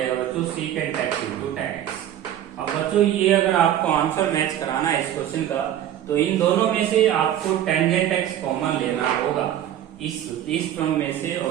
बच्चों secant x into tan x। अब बच्चों ये अगर आपको आंसर मैच कराना है इस क्वेश्चन का, तो इन दोनों में से आपको टेंजेंट x कॉमन लेना होगा। इस टर्म में से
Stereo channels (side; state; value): left; quieter; 11.3 dB